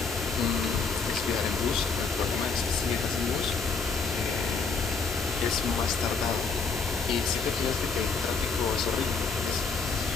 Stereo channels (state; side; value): quieter; right; 4.8 dB